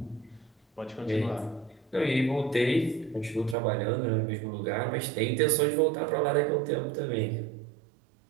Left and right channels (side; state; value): left; drops out; at 3.6 s